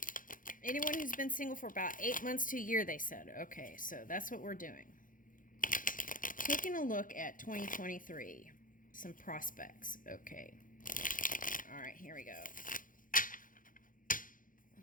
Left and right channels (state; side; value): late; right; 0.39 ms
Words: anyone who's been single for about 8 months to a year, they said. Okay, so that's what we're doing. Taking a look at 2023, some prospects. Okay. All right, here we go.